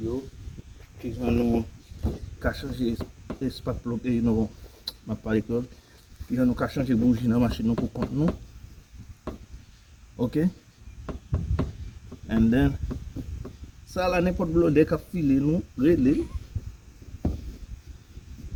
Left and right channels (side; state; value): both; identical; correlation 1.00